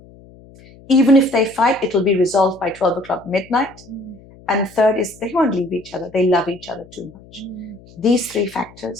Even if they fight, it will be resolved by 12 o'clock midnight. And third is they won't leave each other. They love each other too much. These three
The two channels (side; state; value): left; noise; hum, 23 dB below the sound